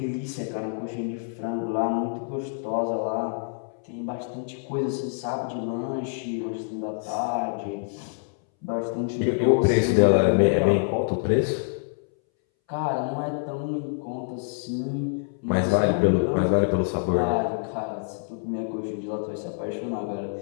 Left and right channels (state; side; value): silent; right; 61 dB below the other